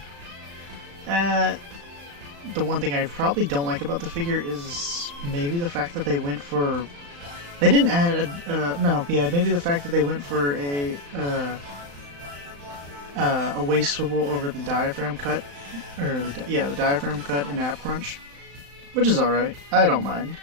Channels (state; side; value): late; left; 35 ms